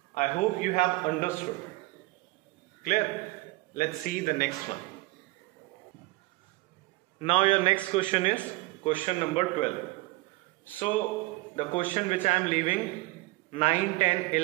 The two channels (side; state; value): left; quieter; 21.9 dB